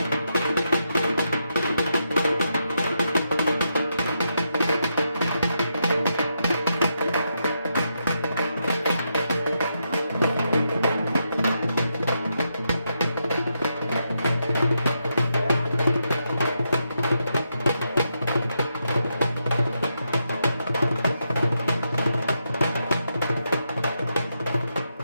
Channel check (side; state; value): both; inverted; correlation -0.83